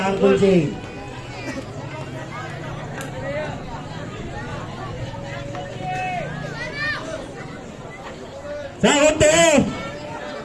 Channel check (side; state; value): both; identical; correlation 1.00